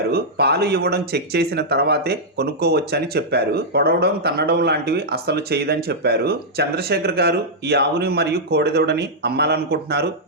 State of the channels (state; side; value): normal; both; correlation -0.08